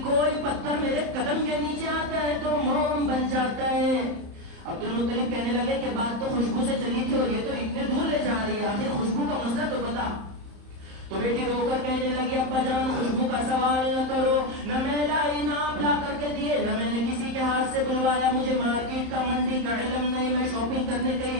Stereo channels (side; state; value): left; late; 31 ms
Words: کوئی پتھر میرے قدم کے نیچے آتا ہے تو موم بن جاتا ہے. عبد المطلب کہنے لگے کہ بات تو خوشبو سے چلی تھی اور یہ تو اتنے دور لے جا رہی ہے, آخر خوشبو کا مسئلہ تو بتا. تو بیٹی رو کر کہنے لگی, ابا جان خوشبو کا سوال نہ کرو, نہ میں لائی, نہ آپ لا کر کے دیے, نہ میں نے کسی کے ہاتھ سے بلوایا, مجھے مارکیٹ کا منڈی کا علم نہیں, میں شاپنگ کرنے